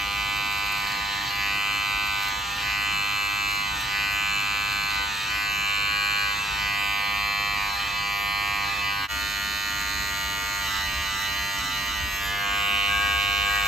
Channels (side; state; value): both; normal; correlation 0.68